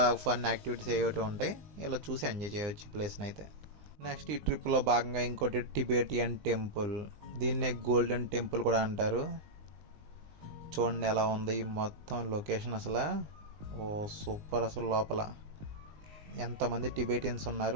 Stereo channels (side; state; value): left; late; 20 ms